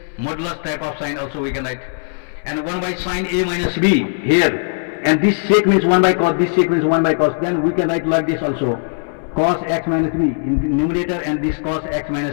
modulus type of sign also we can write, and 1 by sin a minus b here, and this sec means 1 by cos, this sec means 1 by cos, then we can write like this also, cos x minus b in the numerator and this cos x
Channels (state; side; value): silent; right; digital silence